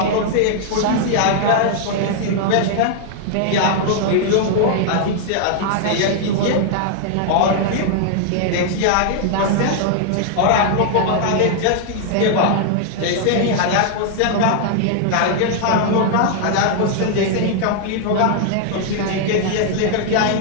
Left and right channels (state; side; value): different; both; correlation 0.00